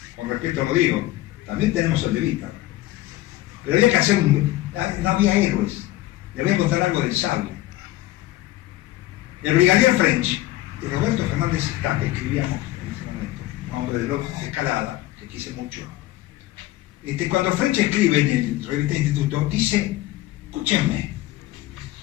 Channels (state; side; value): quieter; right; 16.4 dB